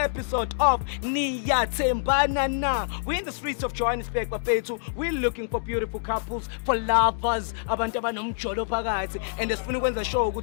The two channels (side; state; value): right; silent; digital silence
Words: of Niyathembana na. We're in the streets of Johannesburg bafethu. We're looking for beautiful couples, for lovers, abantu abanomjolo phakathi and sifuna ukwenza show